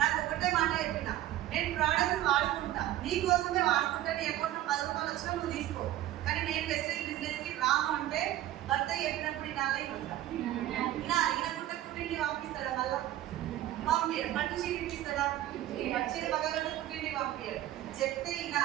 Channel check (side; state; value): left; quieter; 13.7 dB